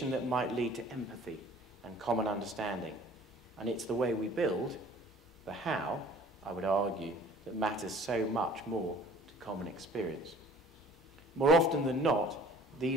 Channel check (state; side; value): normal; both; correlation 0.50